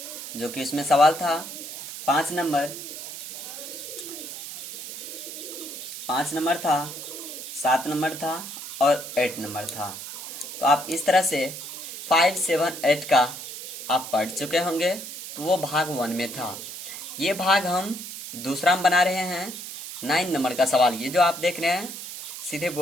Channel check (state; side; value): noise; right; hiss, 9 dB below the sound